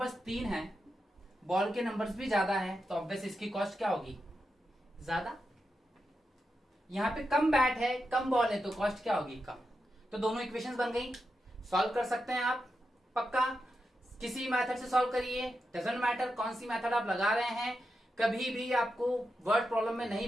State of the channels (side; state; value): both; normal; correlation 0.87